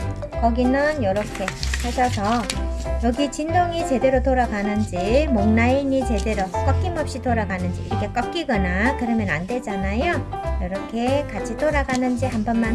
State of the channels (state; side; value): identical; both; correlation 1.00